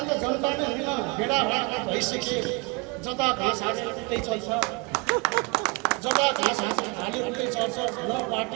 त जनता नै होइन, भेडा भइसके। जता घाँस हालेर उतै चल्छ, जता घाँस हालेर उतै चल्छ। न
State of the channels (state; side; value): quieter; left; 28.3 dB